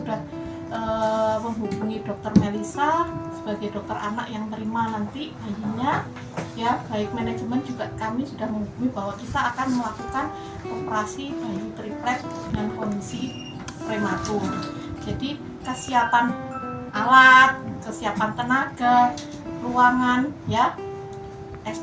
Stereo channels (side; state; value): both; identical; correlation 1.00